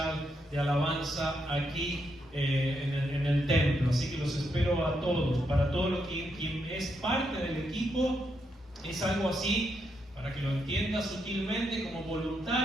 de alabanza aquí en el templo. Así que los espero a todos. Para todo lo que quien es parte del equipo, es algo así, para que lo entienda sutilmente, como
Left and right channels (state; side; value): normal; both; correlation 0.80